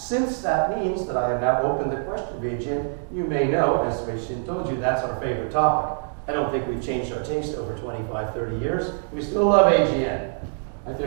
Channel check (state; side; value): silent; left; digital silence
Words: that means that I have now opened the question of AGN, you may know, as Wei-Shin told you, that's our favorite topic. I don't think we've changed our taste over 25, 30 years. We still love AGN. Like,